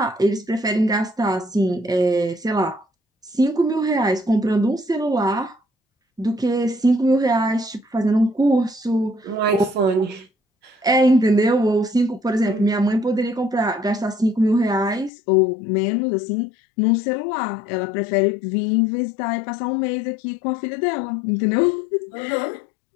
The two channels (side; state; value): right; drops out; at 15.1 s